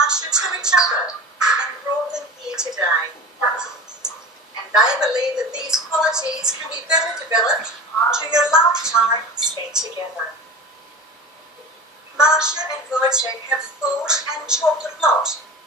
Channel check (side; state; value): both; normal; correlation 0.34